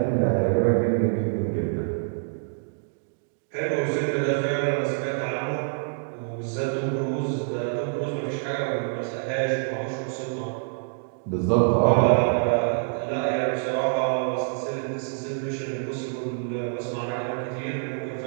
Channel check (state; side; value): silent; left; digital silence